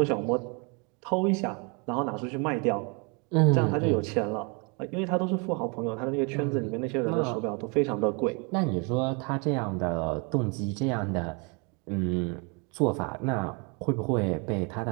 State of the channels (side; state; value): left; quieter; 32.8 dB